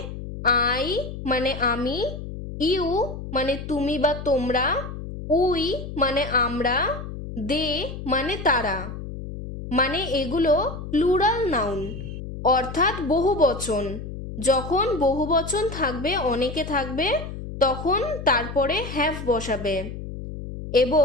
আই মানে আমি, ইউ মানে তুমি বা তোমরা, উই মানে আমরা, দে মানে তারা, মানে এগুলো প্লুরাল নাউন অর্থাৎ বহুবচন। যখন বহুবচন থাকবে, অনেকে থাকবে, তখন তারপরে হ্যাভ বসাবে।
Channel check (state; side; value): noise; left; hum, 9 dB below the sound